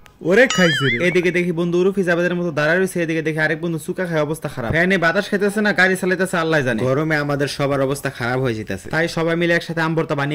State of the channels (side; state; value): both; identical; correlation 1.00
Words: ওরে খাইছে রে। এদিকে দেখি বন্ধু উরুফি জাবেদের মতো দাঁড়ায় রয়েছে, এদিকে দেখি আরেক বন্ধু চুকা খায়, অবস্থা খারাপ। ফ্যানে বাতাস খাইতেছে না, গাড়ি চালাইতেছে আল্লাহ জানে। গরমে আমাদের সবার অবস্থা খারাপ হয়ে যেতেছে, তাই সবাই মিলে একসাথে আম ভর্তা